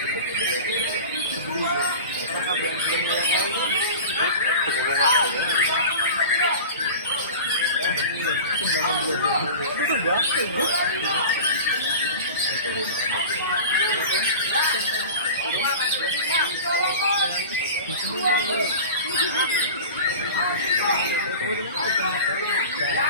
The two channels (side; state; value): both; inverted; correlation -0.34